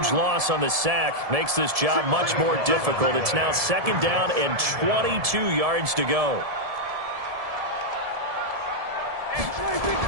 loss on the sack makes this job much more difficult. It's now 2nd down and 22 yards to go.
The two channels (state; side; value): late; left; 1.7 ms